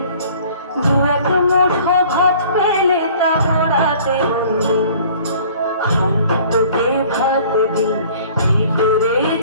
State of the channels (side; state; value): both; inverted; correlation -0.51